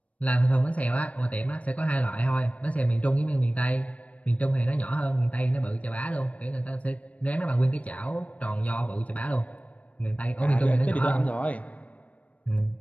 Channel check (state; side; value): late; right; 0.067 ms